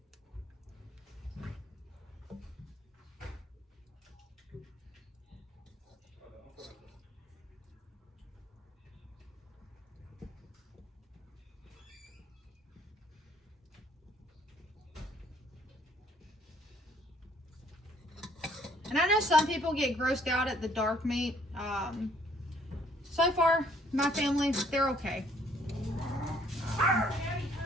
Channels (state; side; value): normal; both; correlation 0.63